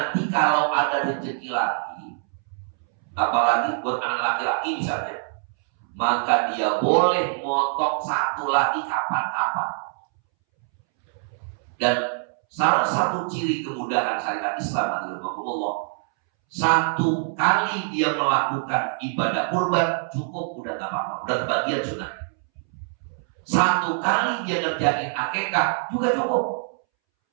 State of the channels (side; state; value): left; silent; 62 dB below the other